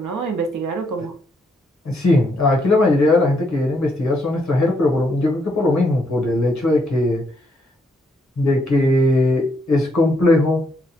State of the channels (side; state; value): both; normal; correlation 0.75